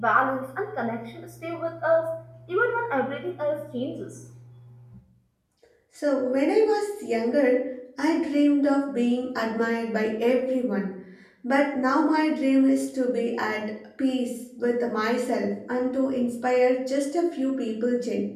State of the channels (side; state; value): both; identical; correlation 1.00